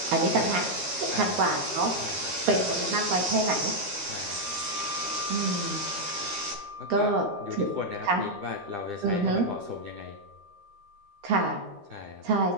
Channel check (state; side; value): late; left; 13 ms